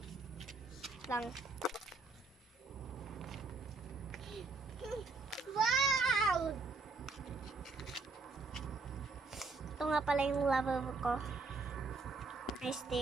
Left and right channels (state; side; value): quieter; left; 3.9 dB